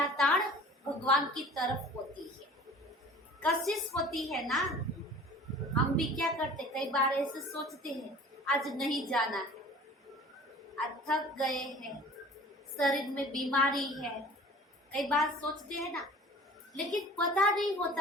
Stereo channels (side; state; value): both; normal; correlation 0.45